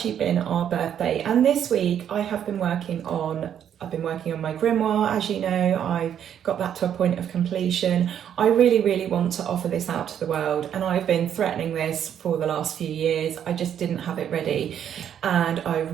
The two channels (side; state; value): left; quieter; 9.3 dB